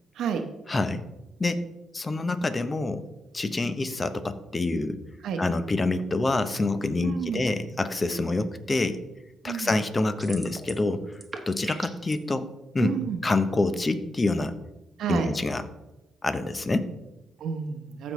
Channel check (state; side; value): normal; both; correlation 0.88